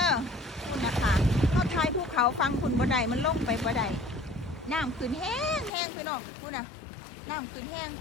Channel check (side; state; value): right; drops out; at 5.7 s